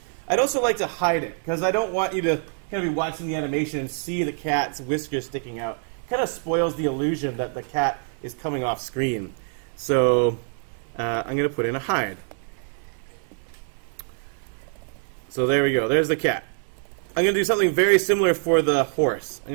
I'd also like to hide it, because I don't want you to kind of be watching the animation and see the cat's whiskers sticking out. It kind of spoils the illusion that the cat is coming off screen. So I'm going to put in a hide. So there we go. There's the cat. I'm going to do something very similar for the horse. I'm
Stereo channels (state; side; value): silent; left; 60 dB below the other